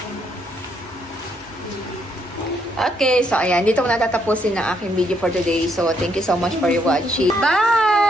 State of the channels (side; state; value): both; normal; correlation 0.73